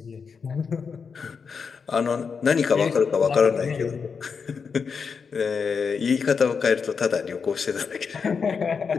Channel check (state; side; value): quieter; right; 5.8 dB